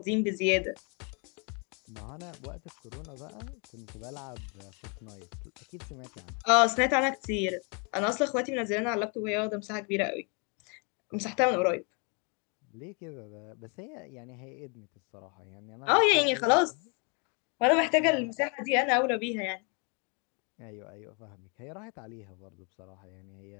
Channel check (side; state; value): right; quieter; 34.8 dB